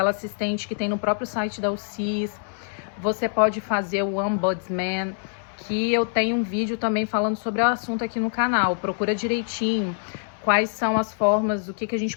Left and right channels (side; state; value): right; silent; 62 dB below the other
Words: assistente que tem no próprio site da UCIS. Você pode fazer o Ombudsman, que eu tenho um vídeo também falando sobre o assunto aqui no canal. Procura direitinho quais são as formas, o que a gente